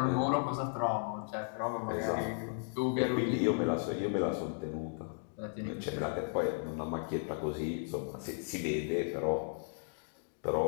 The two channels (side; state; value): right; silent; digital silence